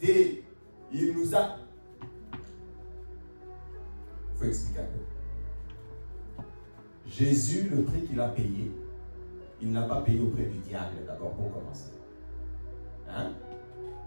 Il nous a... Il faut expliquer un peu. Jésus, le prix qu'il a payé, il n'a pas payé auprès du diable d'abord pour commencer. Hein?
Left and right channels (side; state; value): both; inverted; correlation -1.00